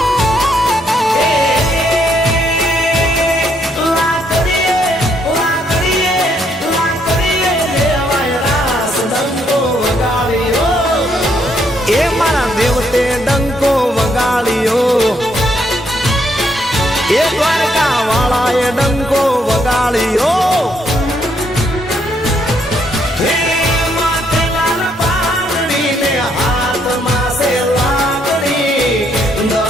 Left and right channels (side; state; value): both; normal; correlation 0.73